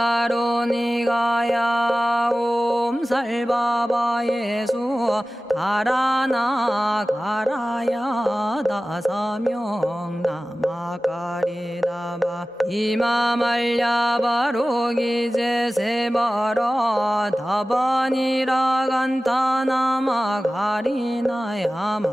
옴살바바예수 다라나 가라야 다사명 나마가리다바 이마말야바로기제 세바라 다바니라 간타나마 가리나야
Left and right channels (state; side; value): normal; both; correlation 0.96